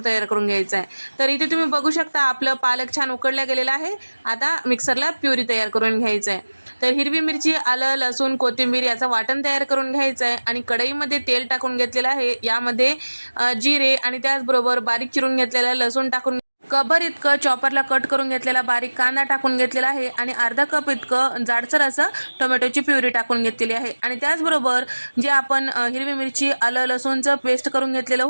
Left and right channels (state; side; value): inverted; both; correlation -1.00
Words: तयार करून घ्यायचं आहे. तर इथे तुम्ही बघू शकता आपलं पालक छान उकडला गेलेला आहे. आता मिक्सरला प्युरी तयार करून घ्यायचं आहे. तर हिरवी मिरची, आलं, लसूण, कोथिंबीर याचं वाटण तयार करून घ्यायचं आहे आणि कढईमध्ये तेल टाकून घेतलेलं आहे. यामध्ये जिरे आणि त्याचबरोबर बारीक चिरून घेतलेला लसूण टाकून कभर इतकं चॉपरला कट करून घेतलेला बारीक कांदा टाकून घेतलेला आहे आणि अर्धा कप इतकं जाडसर असं टोमॅटोची प्युरी टाकून घेतलेली आहे. आणि त्याचबरोबर जे आपण हिरवी मिरची, आलं, लसूणचं पेस्ट करून घेतलेलं